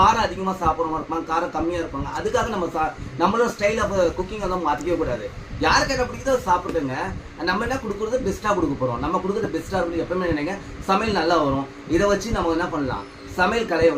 அதிகமாக சாப்பிட்றவங்க இருப்பாங்க, காரம் கம்மியாக இருப்பாங்க. அதுக்காக நம்மளோட ஸ்டைல் ஆஃப் குக்கிங் வந்து மாற்றிக்கவே கூடாது. யாருக்கு என்ன பிடிக்குதோ சாப்பிடுங்க. நம்ம என்ன கொடுக்குறது பெஸ்ட்டாக கொடுக்க போகிறோம். நம்ம கொடுக்குறது பெஸ்ட்டாக இருக்கும். எப்பவுமே நினைங்க சமையல் நல்லா வரும். இதை வச்சு நம்ம என்ன பண்ணலாம், சமையல் கலையை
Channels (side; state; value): both; identical; correlation 1.00